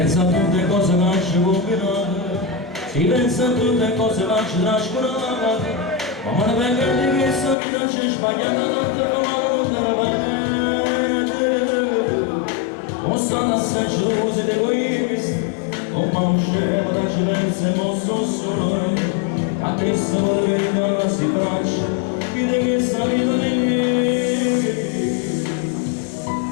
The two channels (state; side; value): drops out; right; at 7.6 s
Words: a tutte cose che lasci combinate, si pensa a tutte cose che lasci trascurate, ma me ne venga di che sta vita c'è sbagliata tante come non te la non stanno assai gelosi ed egoisti, non mi usciamo da cilenza e non sto solo, a te se volevi rimanere si braccia, vede che sta vita di me.